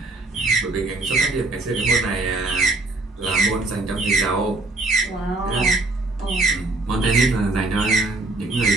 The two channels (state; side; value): quieter; left; 3.0 dB